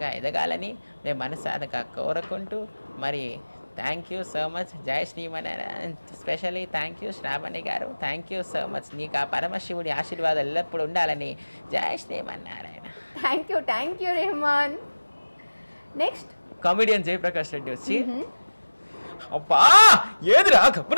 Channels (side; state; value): both; inverted; correlation -1.00